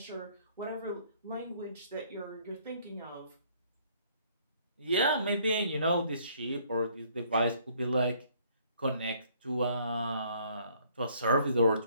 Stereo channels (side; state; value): both; inverted; correlation -0.62